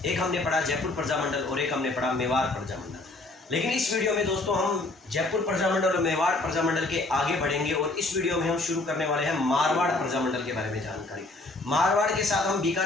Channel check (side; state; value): right; quieter; 3.0 dB